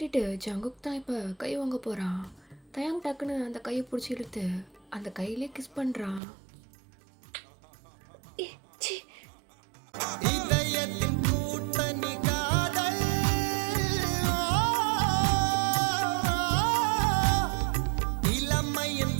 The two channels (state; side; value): drops out; left; at 6.2 s